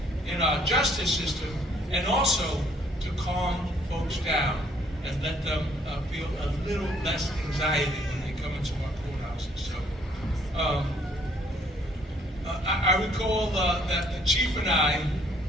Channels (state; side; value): normal; both; correlation 0.63